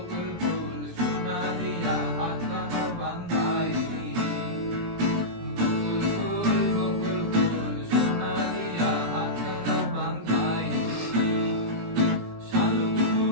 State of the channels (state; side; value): late; left; 17 ms